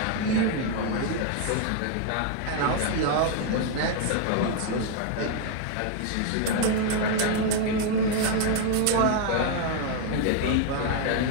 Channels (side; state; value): both; different; correlation 0.00